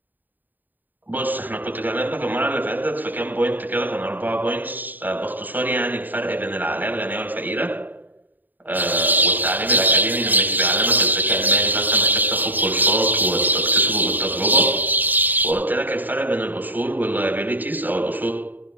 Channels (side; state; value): left; late; 0.088 ms